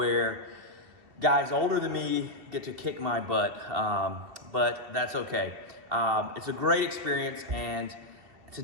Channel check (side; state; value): left; late; 2.7 ms